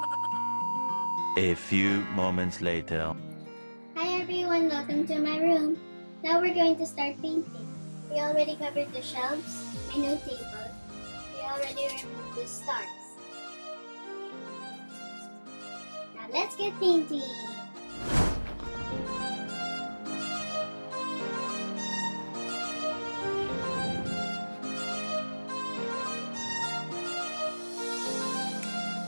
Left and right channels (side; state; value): both; inverted; correlation -1.00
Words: A few moments later. Hi everyone, welcome to my room. Now we're going to start painting. We already covered the shelves, my new table. We already removed the stars. Now let's get painting.